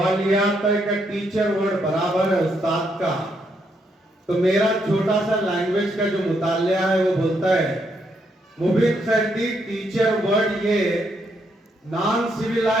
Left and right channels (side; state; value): both; normal; correlation 0.76